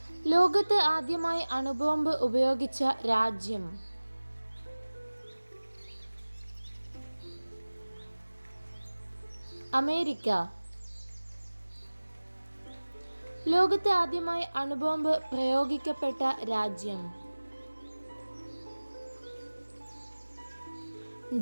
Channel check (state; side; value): inverted; both; correlation -1.00